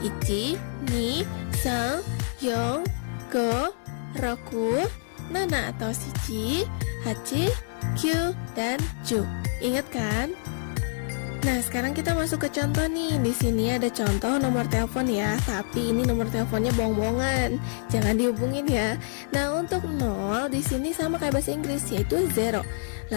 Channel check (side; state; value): right; silent; digital silence